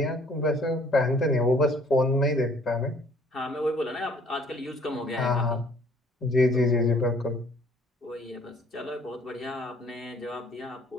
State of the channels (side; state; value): both; normal; correlation 0.59